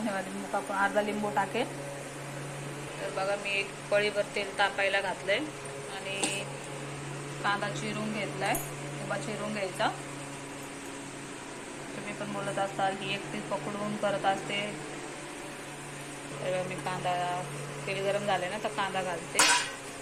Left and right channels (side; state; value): both; identical; correlation 1.00